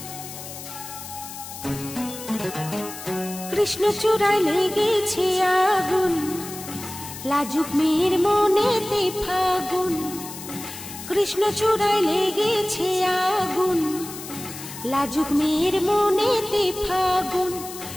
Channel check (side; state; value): left; noise; hiss, 12 dB below the sound